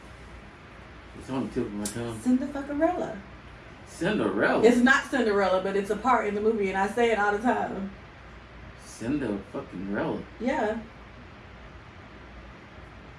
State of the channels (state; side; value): identical; both; correlation 1.00